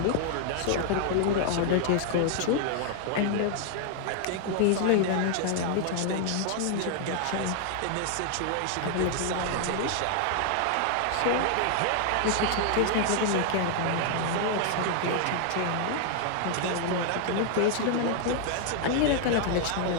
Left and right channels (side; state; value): both; different; correlation 0.00